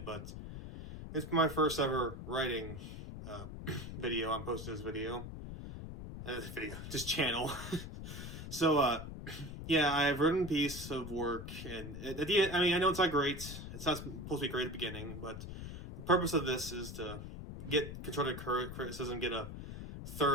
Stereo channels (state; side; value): noise; left; rumble, 9 dB below the sound